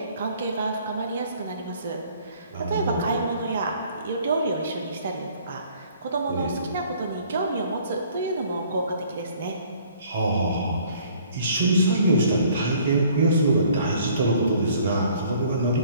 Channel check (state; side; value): inverted; both; correlation -0.57